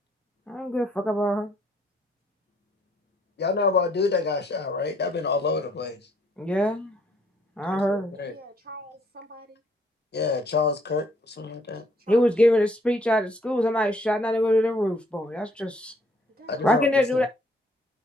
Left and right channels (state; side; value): normal; both; correlation 0.65